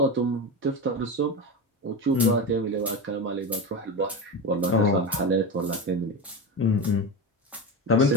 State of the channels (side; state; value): both; normal; correlation 0.20